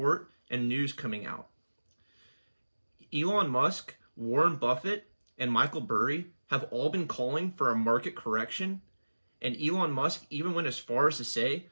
and news coming out. Elon Musk, Warren Buffett, and Michael Burry have all been calling for a market correction, and Elon Musk even went as far as to say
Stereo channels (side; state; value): both; inverted; correlation -1.00